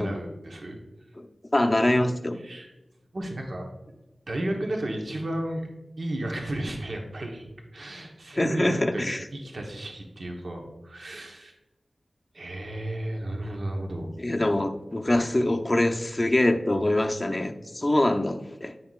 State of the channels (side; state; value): both; normal; correlation 0.98